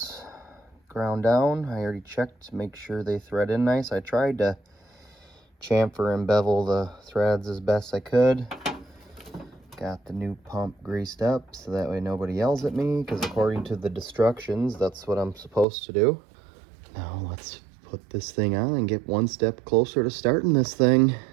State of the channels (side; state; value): left; drops out; at 15.7 s